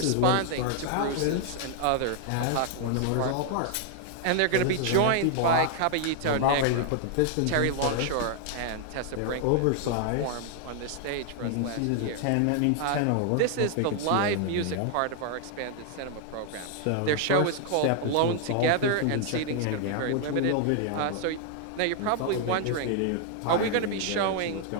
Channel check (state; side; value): different; both; correlation 0.00